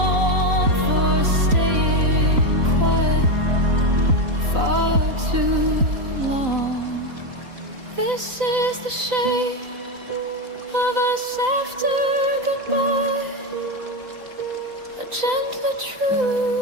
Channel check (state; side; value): late; left; 3.9 ms